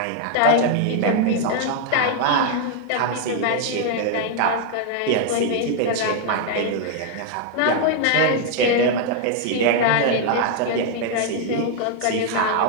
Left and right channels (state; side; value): different; both; correlation 0.00